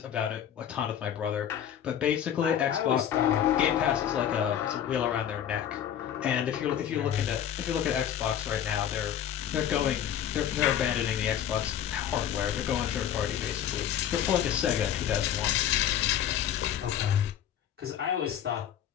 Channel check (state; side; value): quieter; right; 10.0 dB